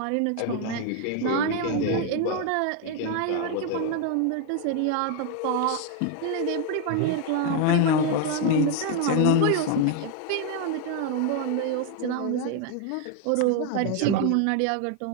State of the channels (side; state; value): both; different; correlation 0.01